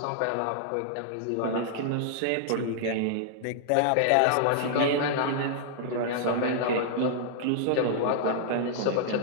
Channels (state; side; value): different; both; correlation -0.01